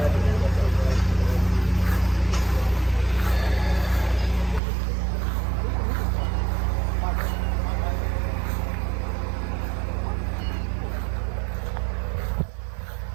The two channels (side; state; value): left; drops out; at 4.6 s